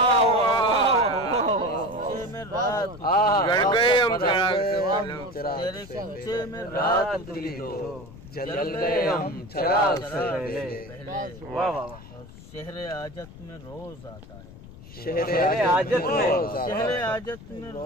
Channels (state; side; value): noise; left; rumble, 17 dB below the sound